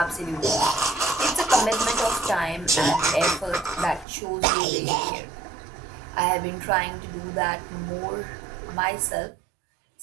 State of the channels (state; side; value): drops out; left; at 4.0 s